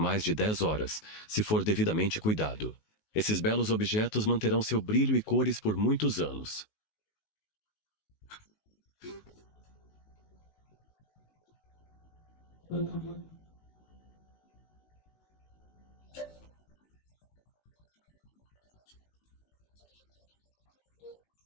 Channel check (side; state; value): right; late; 19 ms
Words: de 10 horas, se for devidamente cuidado. Esses belos objetos manterão seu brilho e cores por muitos anos.